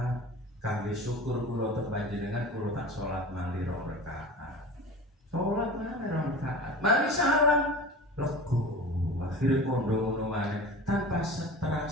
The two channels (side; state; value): both; normal; correlation 0.35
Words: Kangge syukur kula teng panjenengan kula tak salat malih 2 rakaat. Salat malih 2 rakaat. Mari salam lego. Akhirnya kondo ngono maneh tanpa